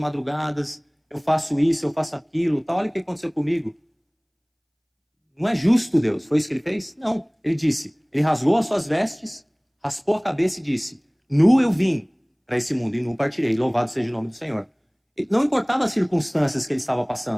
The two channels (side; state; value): both; identical; correlation 1.00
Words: eu faço isso, eu faço aquilo, tal. Olha o que aconteceu comigo. Não é justo, Deus. Foi isso que ele fez? Não. Ele rasgou as suas vestes, raspou a cabeça e disse: nu eu vim para esse mundo e nu partirei, louvado seja o nome do Senhor. Não importava as circunstâncias que ele estava